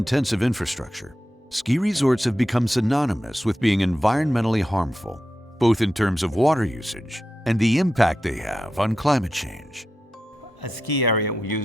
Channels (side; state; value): both; normal; correlation 0.89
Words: infrastructure, ski resorts have become synonymous with being environmentally harmful, both in terms of water usage and the impact they have on climate change. A ski area will